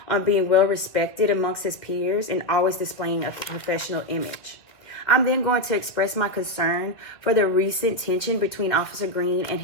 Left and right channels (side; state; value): right; late; 2.0 ms